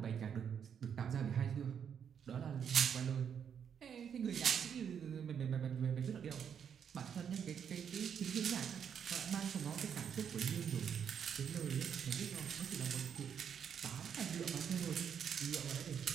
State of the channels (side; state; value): left; quieter; 7.8 dB